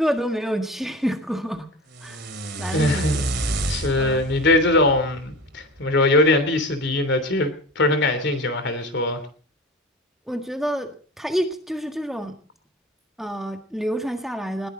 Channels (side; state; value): both; normal; correlation 0.34